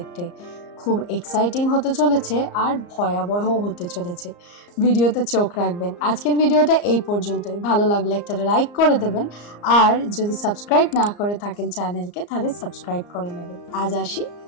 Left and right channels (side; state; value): right; late; 34 ms